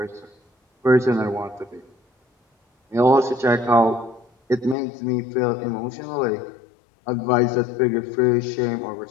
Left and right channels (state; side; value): drops out; right; at 4.8 s